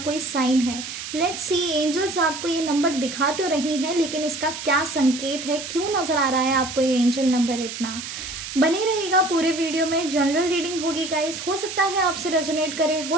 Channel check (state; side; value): noise; right; hiss, 8 dB below the sound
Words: साइन है। लेट्स सी, एंजल्स आपको ये नंबर दिखा तो रही हैं, लेकिन इसका क्या संकेत है, क्यों नज़र आ रहा है आपको ये एंजल नंबर इतना। बने रहेगा पूरे वीडियो में। जनरल रीडिंग होगी गाइस, हो सकता है आपसे रेजोनेट करे,